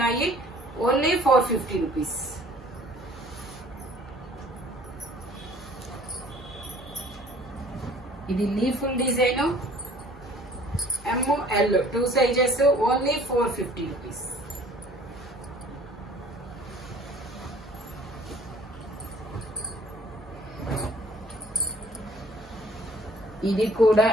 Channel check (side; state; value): both; normal; correlation 0.53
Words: Only 450 rupees. ఇది leafful design, ఎం L 2 sizes, only 450 rupees. ఇది కూడా